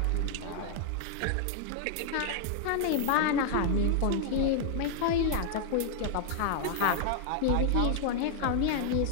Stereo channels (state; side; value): different; both; correlation -0.01